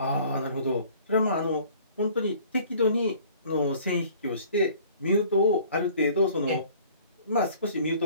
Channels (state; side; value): inverted; both; correlation -0.52